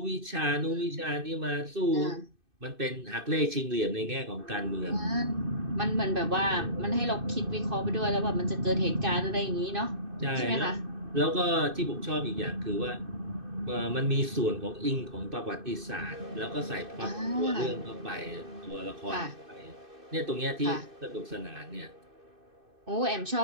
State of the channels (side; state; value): left; late; 2.6 ms